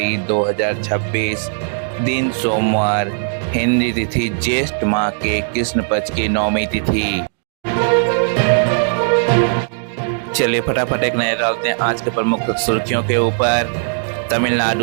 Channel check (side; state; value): left; silent; digital silence